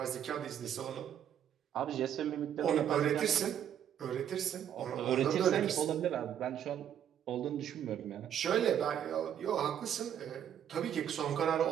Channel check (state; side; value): quieter; left; 9.7 dB